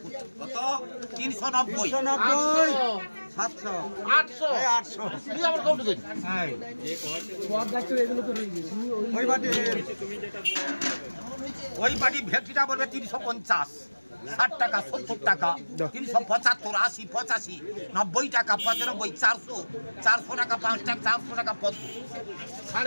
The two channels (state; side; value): inverted; both; correlation -1.00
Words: কত 390 700 800 800 তুই আবার কাউন্ট করি হ্যাঁ সব ডাক্তার এগুলো তো রইছে ওই বাড়ি ভেটকিটা বলবে 350 60 টাকা 70 টাকা 375 80 85 90 টাকা 95 400 400 টাকা 5 টাকা 400 টাকা